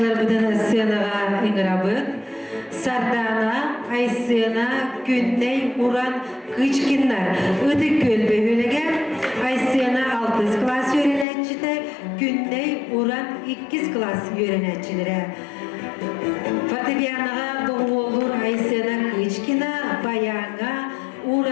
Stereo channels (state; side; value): drops out; right; at 11.2 s